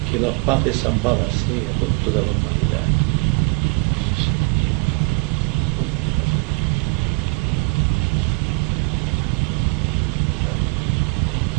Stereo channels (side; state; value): left; quieter; 30.9 dB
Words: Que la paz es ambada sea con toda la humanidad.